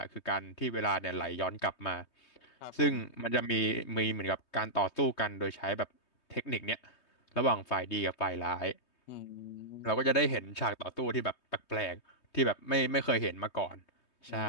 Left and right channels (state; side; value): late; right; 3.2 ms